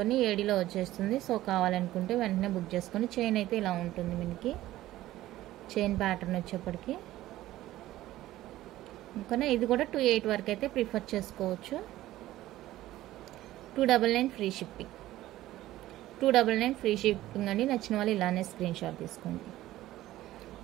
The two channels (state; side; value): quieter; left; 15.3 dB